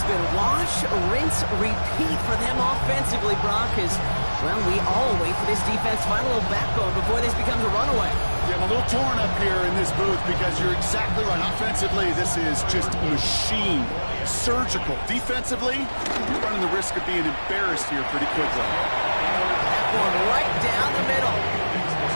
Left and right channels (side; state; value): both; inverted; correlation -1.00